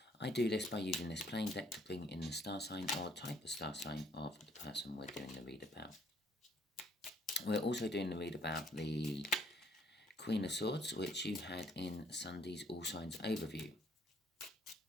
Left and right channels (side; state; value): both; normal; correlation 0.64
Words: I do this by using this plain deck to bring in the star sign or type of star sign of the person we're doing the read about. We're also doing the read about the Queen of Swords, which you had in Sunday's All Signs overview.